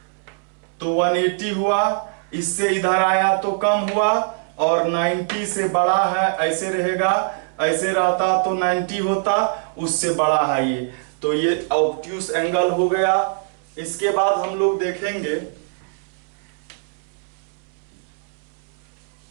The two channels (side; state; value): left; silent; 64 dB below the other